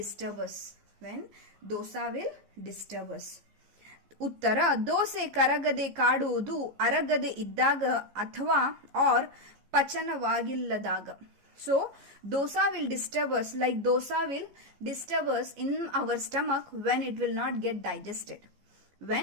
us. When dosa will disturb us. ಉತ್ತರ ದೋಸೆ ಕರಗದೆ ಕಾಡುವುದು ಅರಗದೆ ಇದ್ದಾಗ ಅಥವಾ or ಪಚನವಾಗಿಲ್ಲದಾಗ. So dosa will disturb us, like dosa will disturb us in our stomach when it will not get digested.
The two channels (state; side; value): late; left; 14 ms